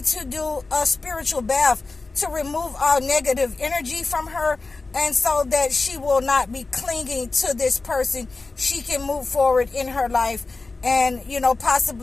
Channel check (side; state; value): right; quieter; 3.7 dB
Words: to do a spiritual bath to remove all negative energy from her, and so that she will not be clinging to this person. She can move forward in her life and, you know,